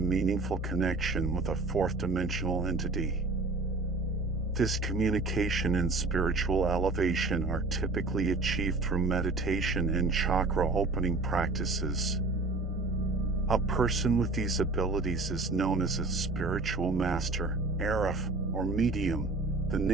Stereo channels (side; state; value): left; quieter; 3.4 dB